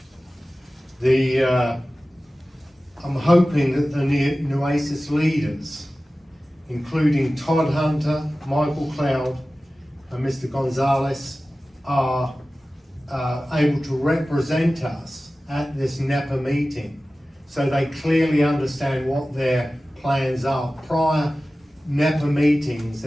I'm hoping that the Nueces leaders, including Todd Hunter, Michael Cloud, and Mr. Gonzalez, are able to represent us at this NEPA meeting, so they clearly understand what their plans are. Prior NEPA meetings,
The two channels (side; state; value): both; normal; correlation 0.96